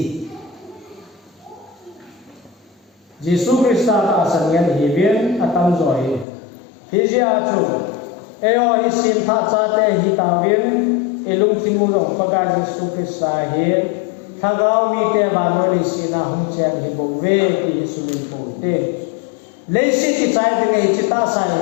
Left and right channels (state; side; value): drops out; right; at 6.2 s